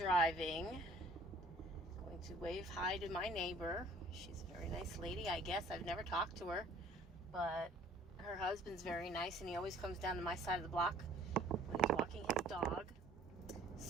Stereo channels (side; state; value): both; normal; correlation 0.54